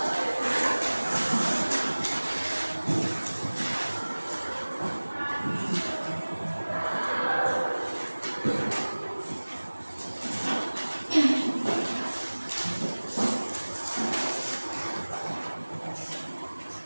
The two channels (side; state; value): both; inverted; correlation -1.00